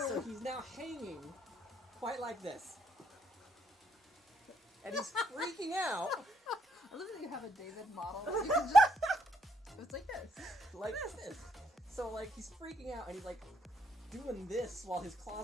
So he's now hanging quite like this. And he's freaking out. I love that you have a David model. You can just... It's like this. Like this. So like he's freaking out and he's like doing this while his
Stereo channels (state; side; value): normal; both; correlation 0.73